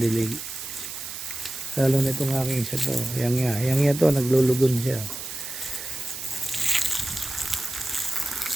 Lalo na itong aking isa to, yang to, naglulugon siya.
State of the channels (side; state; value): right; noise; hiss, 9 dB below the sound